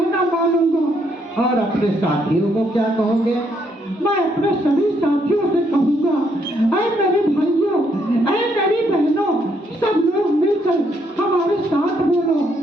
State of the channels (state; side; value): normal; both; correlation 0.73